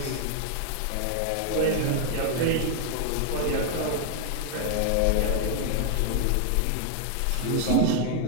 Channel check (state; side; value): different; both; correlation 0.00